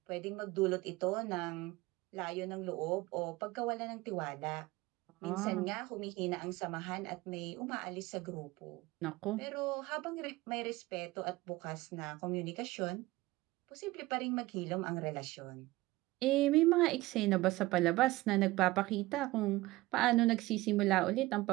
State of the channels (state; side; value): quieter; left; 19.3 dB